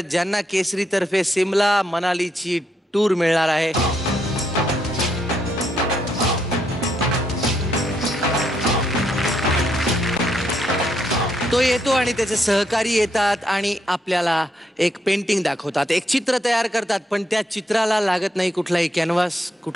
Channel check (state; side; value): normal; both; correlation 0.77